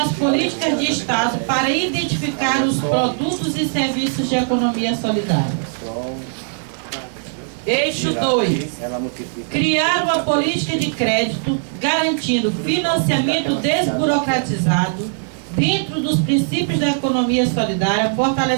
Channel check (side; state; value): left; silent; digital silence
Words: políticas de Estado para identificar os produtos e serviços de economia solidária. Eixo 2. Criar uma política de crédito garantindo financiamento desburocratizado dentro dos princípios da economia solidária,